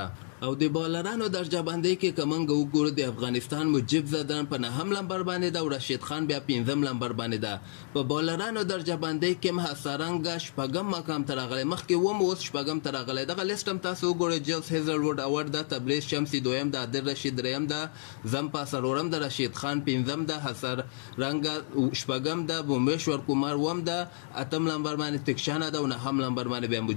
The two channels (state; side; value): silent; right; digital silence